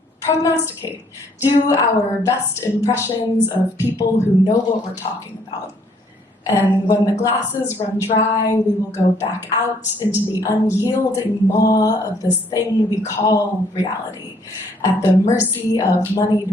prognosticate, do our best impressions of people who know what we're talking about. And when the glasses run dry, we will go back out into the unyielding maw of this thing we call reality, at the mercy of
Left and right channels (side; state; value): both; normal; correlation 0.65